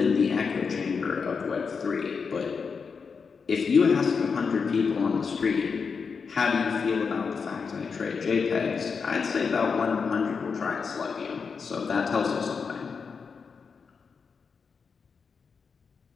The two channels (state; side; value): quieter; right; 5.5 dB